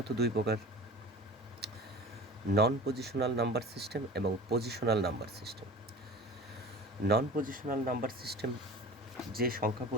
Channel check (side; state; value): both; normal; correlation 0.38